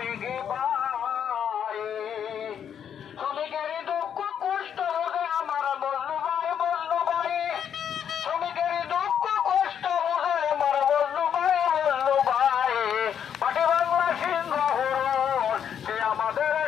ভাই শ্রমিকের দুঃখ কষ্ট হবে আমার বন্ধু ভাই শ্রমিকের দুঃখ কষ্ট হবে আমার বন্ধু ভাই পাটি বাংলা সিংহ সে আমাদের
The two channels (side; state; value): right; quieter; 8.6 dB